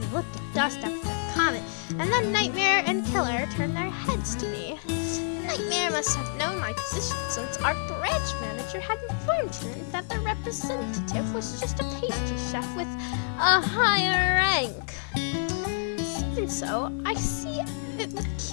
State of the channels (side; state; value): right; silent; digital silence